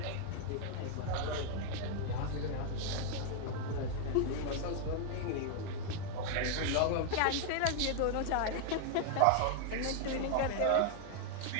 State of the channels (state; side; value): different; both; correlation 0.00